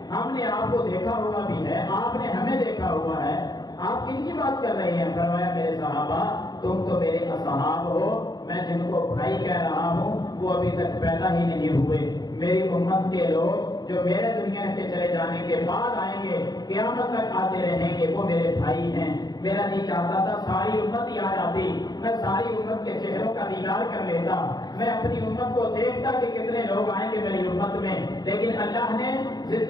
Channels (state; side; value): late; right; 0.20 ms